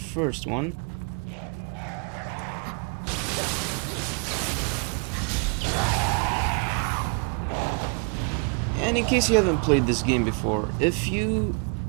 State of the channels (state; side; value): quieter; left; 37.5 dB